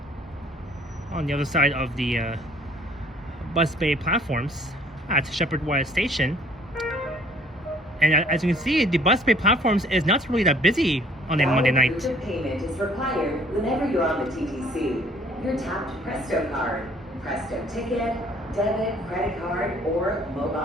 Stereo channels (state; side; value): normal; both; correlation 0.58